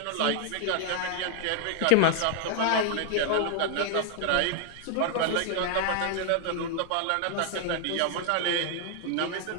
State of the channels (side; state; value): both; different; correlation 0.00